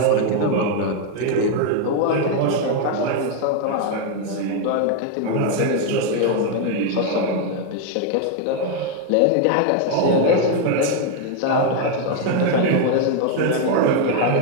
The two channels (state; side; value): different; both; correlation 0.01